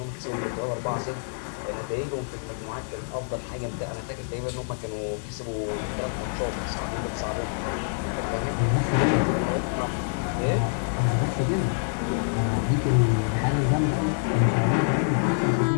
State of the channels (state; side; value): silent; right; digital silence